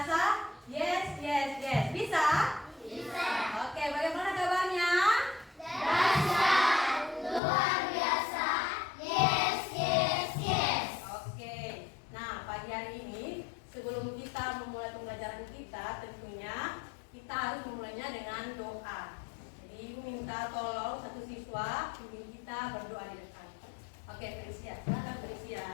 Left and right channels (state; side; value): drops out; right; at 7.4 s